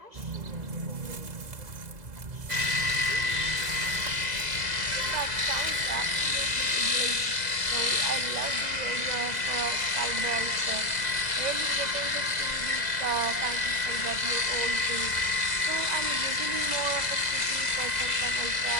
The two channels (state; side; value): late; left; 2.0 ms